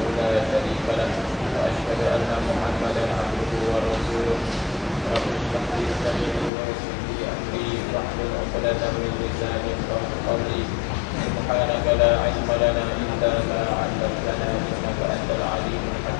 لا شريك له وأشهد أن محمدا عبده ورسوله رب اشرح لي صدري ويسر لي أمري واحلل عقدة من لساني يفقهوا قولي سبحانك لا علم لنا إلا ما علمتنا إنك أنت العليم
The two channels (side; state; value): right; drops out; at 6.5 s